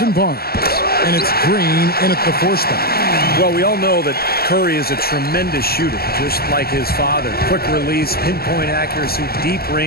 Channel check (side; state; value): right; late; 0.45 ms